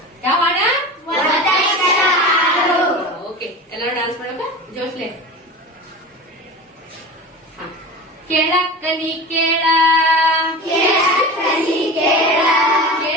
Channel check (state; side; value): normal; both; correlation 0.31